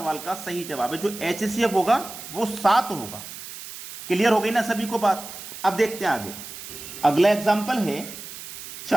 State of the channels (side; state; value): right; noise; hiss, 12 dB below the sound